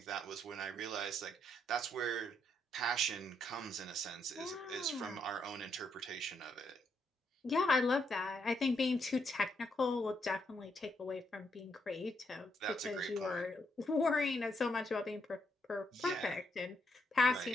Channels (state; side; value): normal; both; correlation 0.77